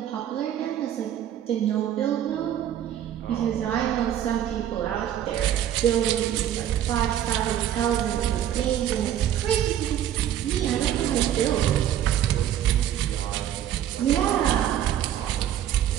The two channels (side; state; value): left; quieter; 10.9 dB